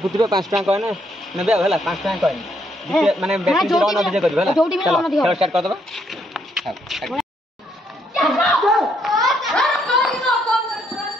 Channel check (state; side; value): normal; both; correlation 0.72